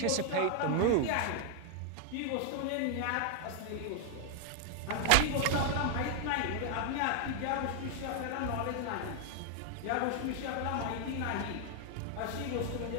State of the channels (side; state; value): both; different; correlation 0.00